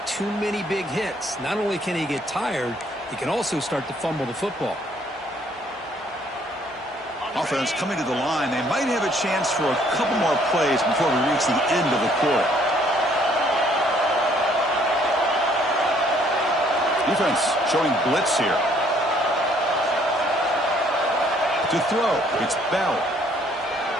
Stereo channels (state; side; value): normal; both; correlation 0.63